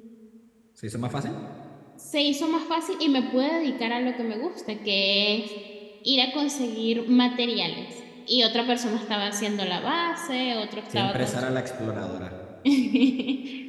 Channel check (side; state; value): both; identical; correlation 1.00